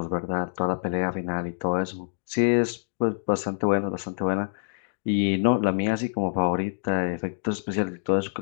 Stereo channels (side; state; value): right; silent; digital silence